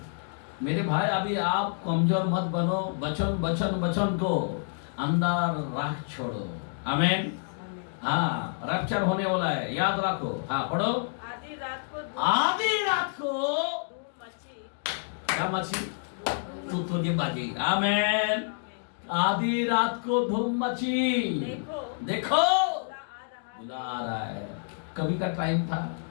मेरे भाई, अभी आप कमजोर मत बनो। वचन को अंदर रख छोड़ो। आमीन। हाँ, रैप्चर होने वाला है, याद रखो। हाँ, पढ़ो। आधी रात को क्या मची? तुतुरी बाजी। आमीन। आधी रात को धूम मची। देखो बुला आ रहा है। कभी का टाइम था।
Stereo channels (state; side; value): silent; right; digital silence